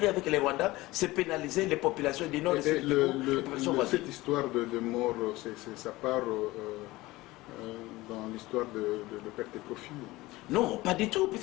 avec les Rwandais, c'est pénaliser les populations du Nord et les populations voisines. Cette histoire de mort, ça part dans l'histoire de perte et profit? Non, pas du tout,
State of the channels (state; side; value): quieter; right; 19.4 dB